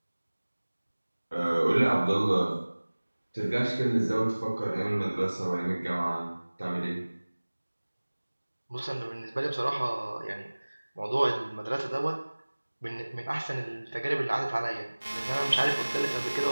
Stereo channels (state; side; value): inverted; both; correlation -1.00